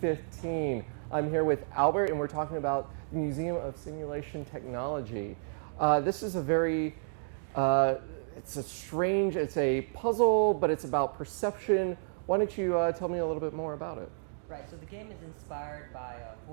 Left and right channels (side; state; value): left; silent; digital silence